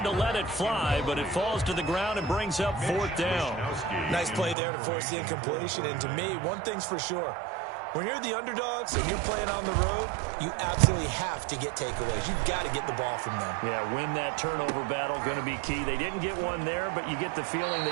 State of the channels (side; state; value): left; drops out; at 4.5 s